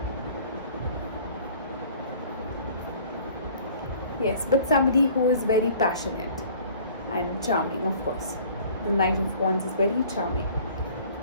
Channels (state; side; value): inverted; both; correlation -0.51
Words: Yes, but somebody who is very passionate and charming, of course. The Knight of Wands is very charming.